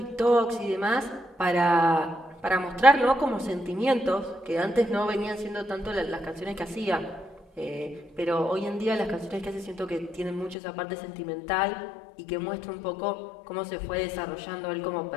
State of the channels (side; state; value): right; drops out; at 10.6 s